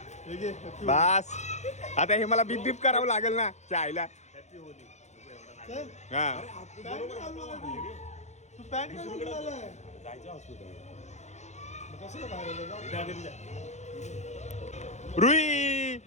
बस आता हे मला बीप बीप करावं लागेल ना चायला. हा तू पॅन्ट घालून आलाय. रुई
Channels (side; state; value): right; late; 0.33 ms